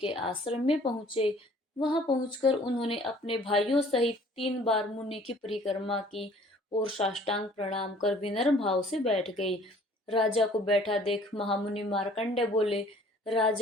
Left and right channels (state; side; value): normal; both; correlation 0.54